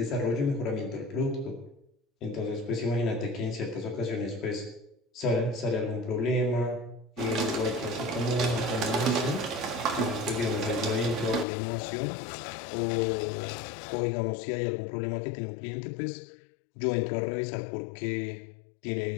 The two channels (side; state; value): right; drops out; at 11.5 s